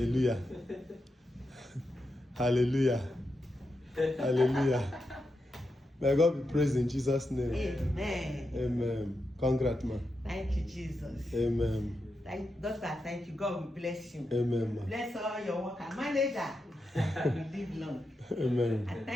Hallelujah. Hallelujah. May God be praised in Jesus' name. Amen. Amen. Congrats, man. Thank you, Jesus. Amen. Doctor, thank you. God will bless you. Amen, man. Bless all your workers. Manager, you live long. Amen. I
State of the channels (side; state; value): both; normal; correlation 0.87